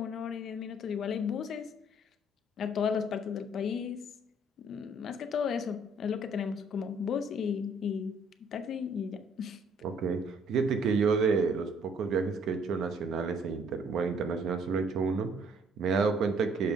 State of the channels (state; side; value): normal; both; correlation 0.62